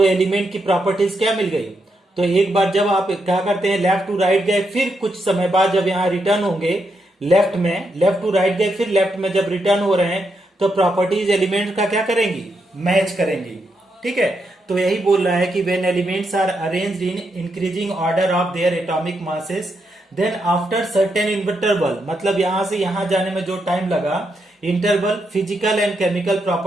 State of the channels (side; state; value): both; normal; correlation 0.81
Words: एलिमेंट की प्रॉपर्टीज क्या मिल गई। तो एक बार जब आप क्या करते हैं लेफ्ट टू राइट गए, फिर कुछ समय बाद जब यहाँ रिटर्न होंगे लेफ्ट में, लेफ्ट टू राइट गए फिर लेफ्ट में जब रिटर्न हो रहे हैं तो प्रॉपर्टीज एलिमेंट का क्या करेंगी, मैच करेंगी। ठीक है, तो यही बोल रहा है कि when elements are arranged in increasing order of their atomic masses then after certain interval, मतलब यहां से यहां जाने में जो टाइम लगा interval, physical and chemical